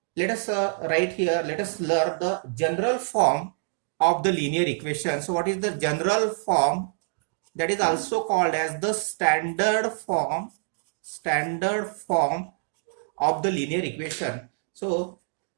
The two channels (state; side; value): silent; left; digital silence